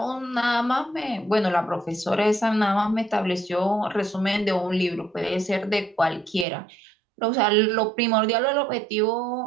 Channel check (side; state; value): left; drops out; at 6.5 s